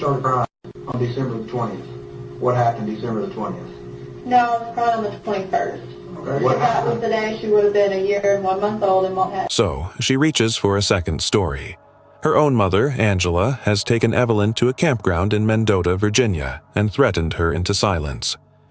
crying on December the 20th. What happened December the 20th? No, I was crying on the 21st. Okay. If that was the day she would have been 1 year and 1 month old and won't have. So she reaches for a second story. Her own mother, Angela, has taken Evelyn to a campground in Mendota, Virginia, and threatened her into silence.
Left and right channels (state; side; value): identical; both; correlation 1.00